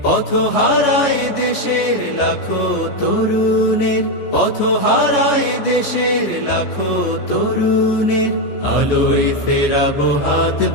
পথ হারায় দেশের লাখো তরুণের, পথ হারায় দেশের লাখো তরুণের, আলোয় ফেরাবো হাত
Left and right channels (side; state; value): right; late; 14 ms